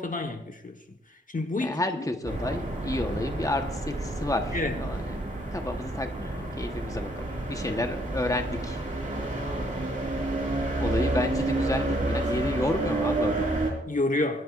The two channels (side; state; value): both; normal; correlation 0.67